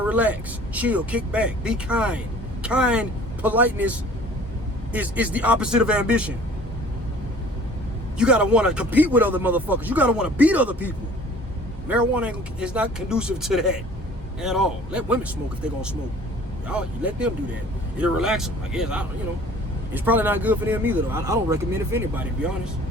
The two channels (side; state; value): both; normal; correlation 0.50